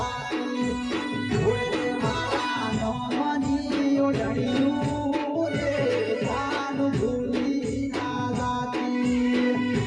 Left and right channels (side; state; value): both; identical; correlation 1.00